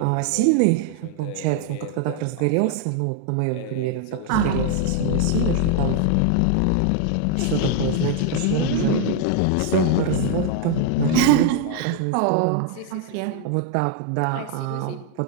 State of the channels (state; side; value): different; both; correlation 0.00